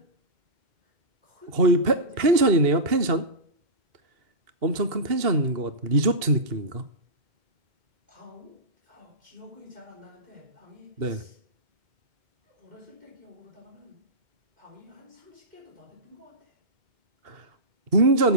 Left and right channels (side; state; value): left; late; 2.7 ms